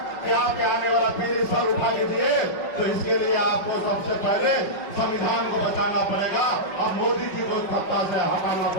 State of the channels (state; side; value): late; right; 5.3 ms